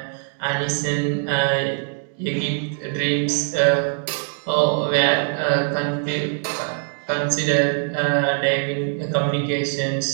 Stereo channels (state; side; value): silent; left; 64 dB below the other